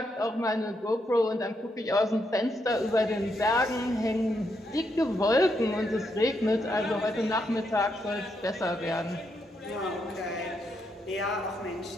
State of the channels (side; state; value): both; normal; correlation 0.79